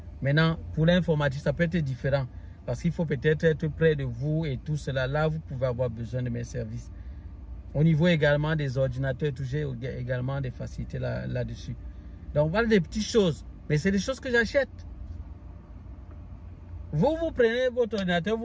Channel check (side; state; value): both; identical; correlation 1.00